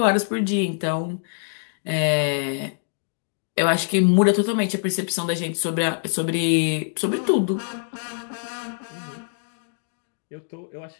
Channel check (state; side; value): silent; right; digital silence